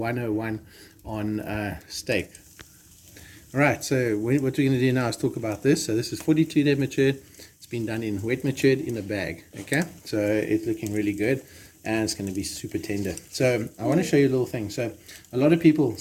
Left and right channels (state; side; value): identical; both; correlation 1.00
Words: on steak. All right, so what we're going to do now is talk about this. So this is 42-day matured. It's been done in wet matured in a bag. Okay, so it's looking really good. And it's going to be super tender. So I want to show you a little thing. So a lot of people,